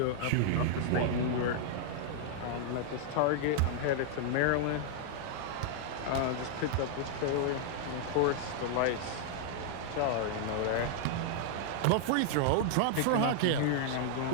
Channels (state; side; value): different; both; correlation -0.01